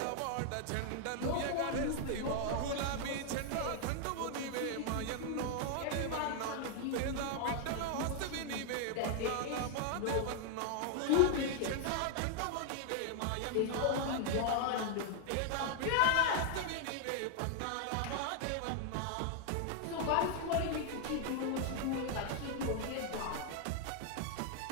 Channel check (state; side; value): different; both; correlation 0.00